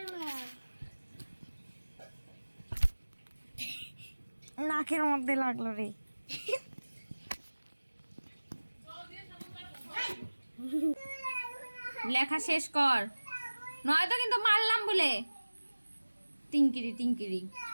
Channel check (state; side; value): inverted; both; correlation -1.00